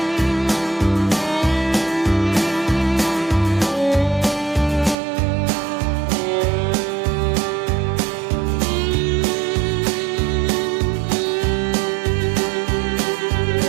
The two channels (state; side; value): drops out; left; at 5.0 s